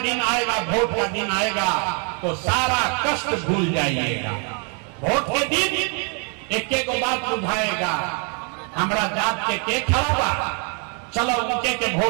दिन आएगा, वोट का दिन आएगा, तो सारा कष्ट भूल जाइएगा। वोट के दिन एक एक बात बुझाएगा, हमारा जात के खड़ा बा, चलो उनके के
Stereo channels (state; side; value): quieter; left; 37.3 dB